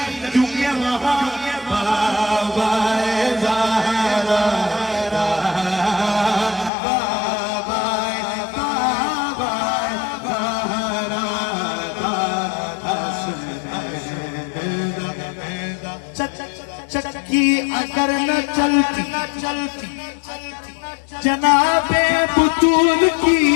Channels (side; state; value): right; drops out; at 6.7 s